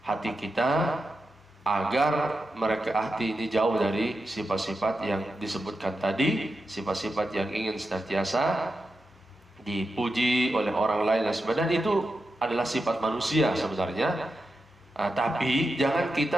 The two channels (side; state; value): both; normal; correlation 0.89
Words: hati kita, agar hati ini jauh dari sifat-sifat yang disebutkan tadi, sifat-sifat yang ingin senantiasa dipuji oleh orang lain dan sebagainya. Itu adalah sifat manusia sebenarnya. Tapi jangan